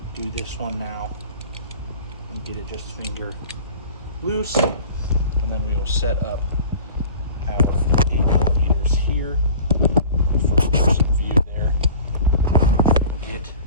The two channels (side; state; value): both; inverted; correlation -0.43